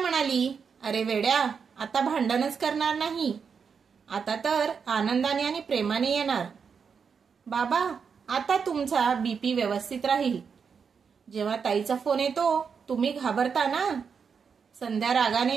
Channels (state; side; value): quieter; left; 6.2 dB